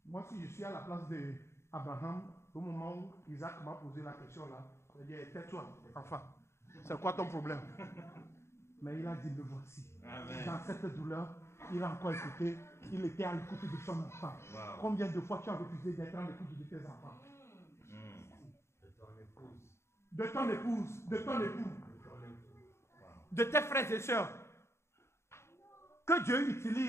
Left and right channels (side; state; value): right; late; 0.13 ms